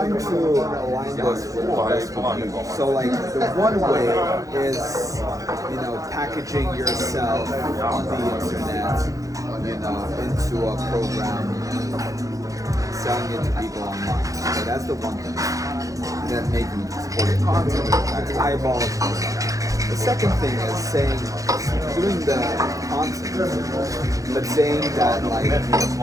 to align this with the best of you. So like the one way is, packaging yourself on the internet, into a program, selling it to people online. So that's the one thing. And then making supporting content, attract eyeballs. The second thing is doing the content, but saying that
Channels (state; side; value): late; left; 0.16 ms